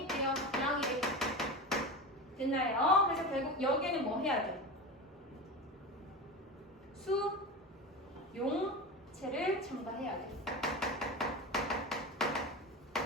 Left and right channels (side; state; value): both; normal; correlation 0.25